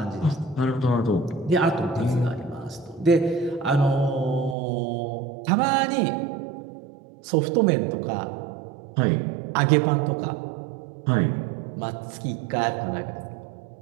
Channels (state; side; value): drops out; left; at 4.5 s